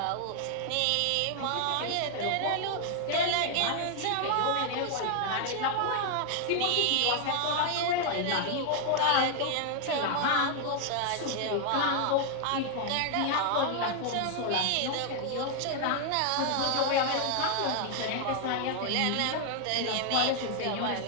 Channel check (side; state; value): both; different; correlation 0.00